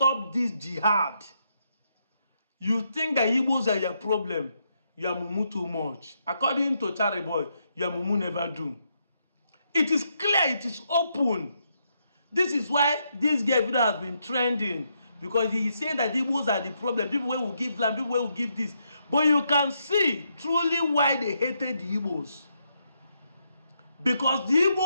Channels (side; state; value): both; inverted; correlation -0.78